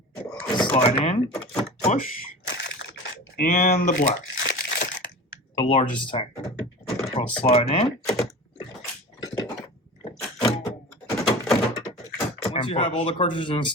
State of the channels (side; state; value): both; normal; correlation 0.34